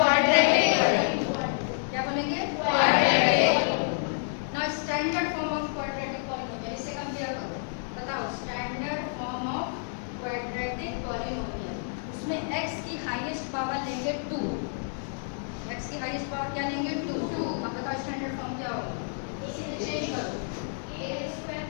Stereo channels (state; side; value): silent; right; 59 dB below the other